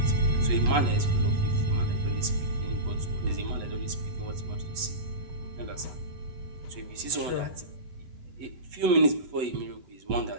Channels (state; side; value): late; left; 8.0 ms